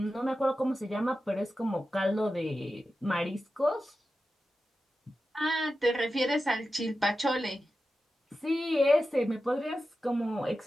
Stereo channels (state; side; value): normal; both; correlation 0.92